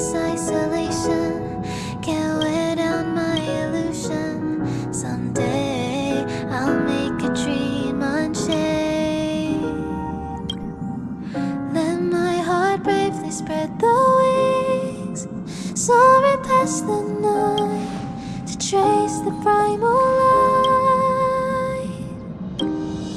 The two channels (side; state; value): both; identical; correlation 1.00